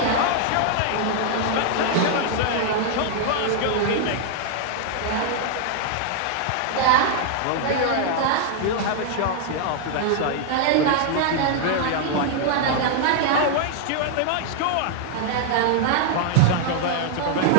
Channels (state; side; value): different; both; correlation -0.01